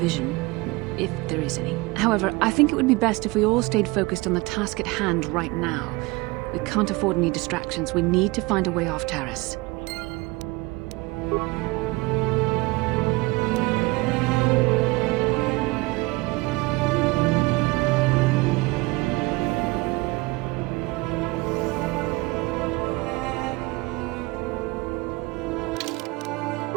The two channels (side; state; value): left; quieter; 23.5 dB